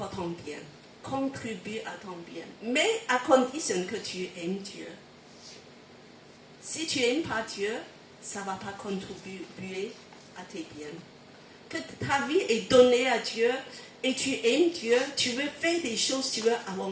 ton bien. Contribue à ton bien. Mais à condition que tu aimes Dieu. Si tu n'aimes pas Dieu, ça ne va pas contribuer à tes biens. Que ta vie est donnée à Dieu et tu aimes Dieu, tu veux faire des choses, tu veux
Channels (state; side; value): identical; both; correlation 1.00